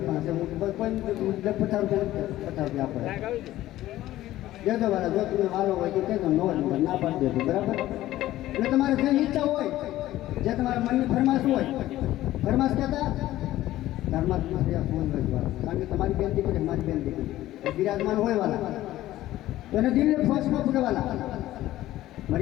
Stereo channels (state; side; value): quieter; right; 15.0 dB